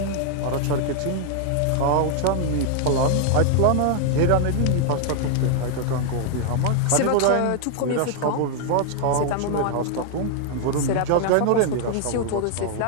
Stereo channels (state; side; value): different; both; correlation 0.00